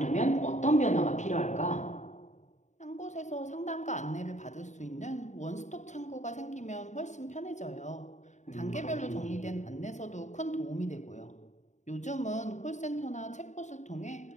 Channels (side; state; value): right; late; 0.34 ms